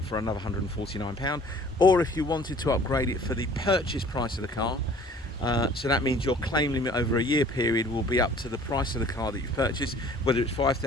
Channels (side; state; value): both; normal; correlation 0.51